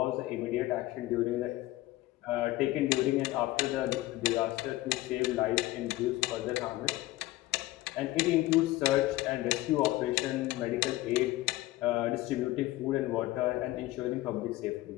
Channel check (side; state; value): right; quieter; 17.6 dB